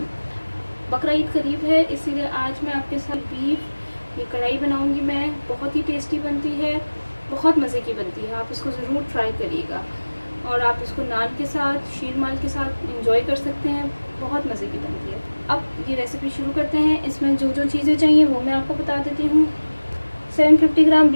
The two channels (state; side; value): inverted; both; correlation -1.00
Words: Bakra Eid करीब है, इसीलिए आज मैं आपके साथ बीफ ये कढ़ाई बनाऊंगी। मैं बहुत ही टेस्टी बनती है, बहुत मज़े की बनती है। आप इसको ज़रूर ट्राई करिएगा और आप इसको नान के साथ, शीर माल के साथ इंजॉय कर सकते हैं। बहुत मज़े की बनती है। अब ये रेसिपी शुरू करते हैं। इसमें जो जो चीज़ें चाहिए वो मैं आपको बता देती हूँ। 750 ग्राम